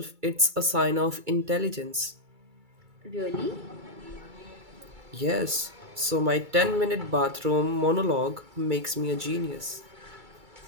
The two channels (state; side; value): late; left; 2.3 ms